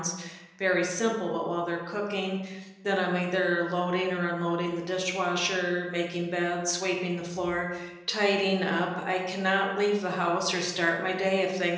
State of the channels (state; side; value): identical; both; correlation 1.00